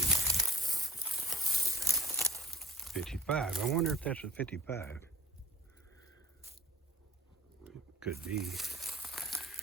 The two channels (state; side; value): normal; both; correlation 0.43